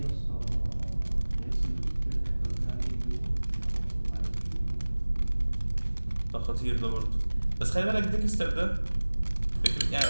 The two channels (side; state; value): both; inverted; correlation -1.00